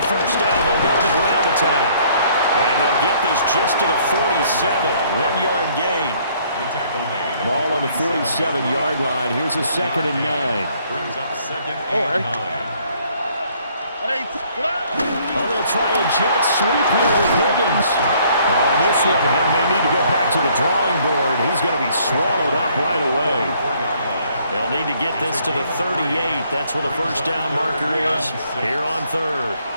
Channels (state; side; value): inverted; both; correlation -0.63